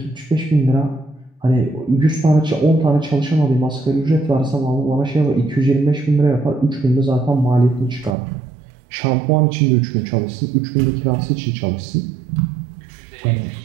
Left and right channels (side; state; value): left; drops out; at 8.2 s